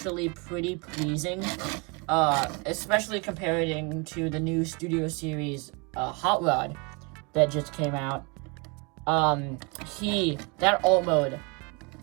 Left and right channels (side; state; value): left; quieter; 31.3 dB